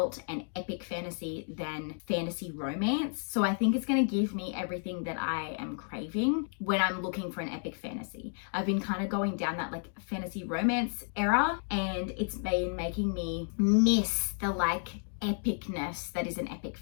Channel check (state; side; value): silent; right; 56 dB below the other